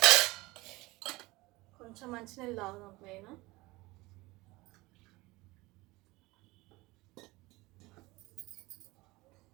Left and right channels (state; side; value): quieter; left; 21.5 dB